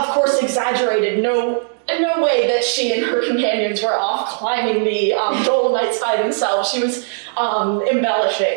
course, exaggerated. No way that she and her companions were off climbing the Dolomites by themselves. She was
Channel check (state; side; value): silent; left; digital silence